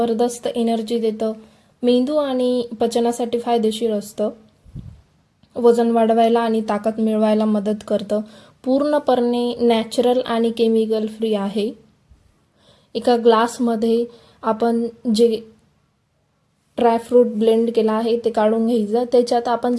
एनर्जी देतं, मेंदू आणि पचनासाठी फायदेशीर असतं, वजन वाढवायला आणि ताकद मिळवायला मदत करतं। पूर्णपणे नॅचरल आणि केमिकल फ्री आहे। एका ग्लासमध्ये आपण जे ड्रायफ्रूट ब्लेंड केला आहे ते काढून घ्यायचं। त्याच्यात आपण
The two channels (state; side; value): identical; both; correlation 1.00